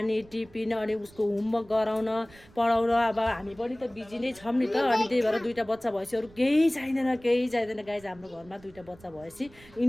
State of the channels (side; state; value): right; noise; rumble, 24 dB below the sound